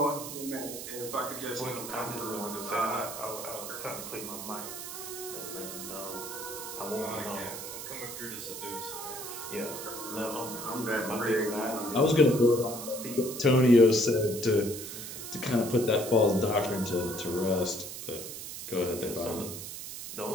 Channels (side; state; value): right; noise; hiss, 8 dB below the sound